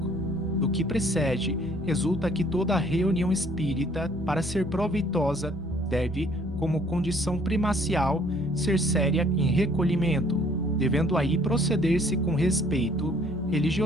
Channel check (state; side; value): normal; both; correlation 0.59